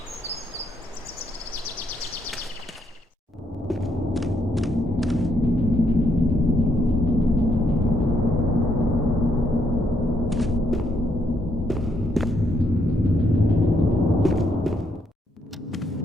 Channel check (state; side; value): normal; both; correlation 0.74